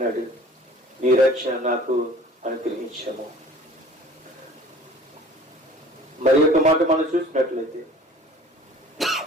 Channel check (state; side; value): normal; both; correlation 0.47